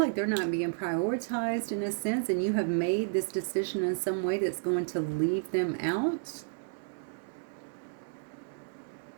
they're not being prioritized in a sense, and you have made this decision in some way that's going to leave them out.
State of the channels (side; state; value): left; silent; 57 dB below the other